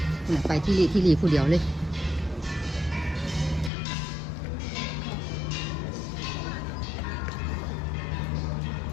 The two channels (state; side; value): drops out; right; at 3.7 s